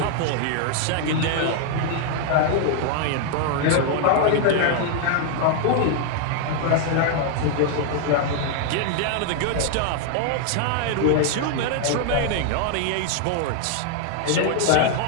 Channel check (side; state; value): both; different; correlation 0.00